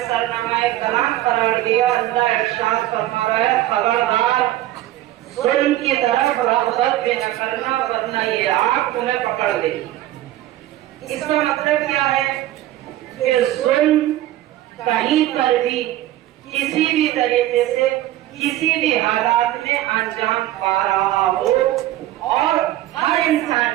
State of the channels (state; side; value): quieter; left; 14.6 dB